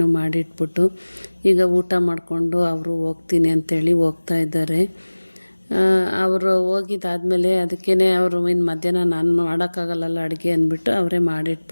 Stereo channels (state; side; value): inverted; both; correlation -1.00